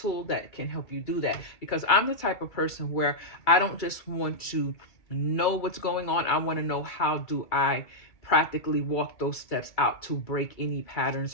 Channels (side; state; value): right; late; 2.3 ms